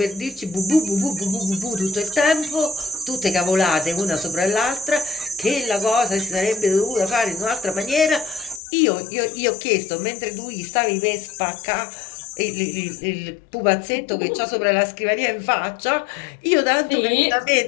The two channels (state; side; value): drops out; right; at 8.6 s